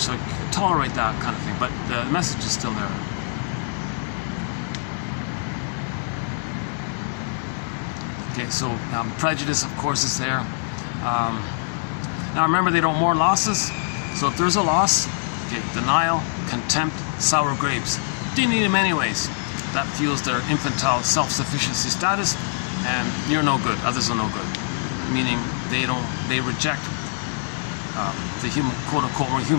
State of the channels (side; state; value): right; silent; 63 dB below the other